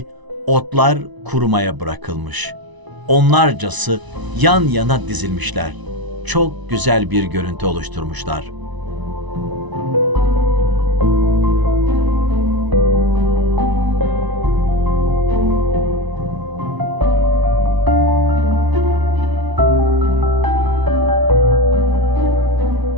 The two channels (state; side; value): late; left; 1.0 ms